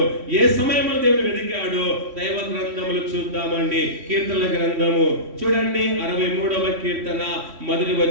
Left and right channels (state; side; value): late; left; 3.1 ms